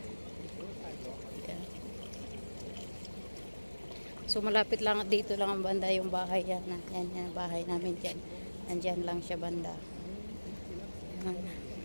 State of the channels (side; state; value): both; inverted; correlation -1.00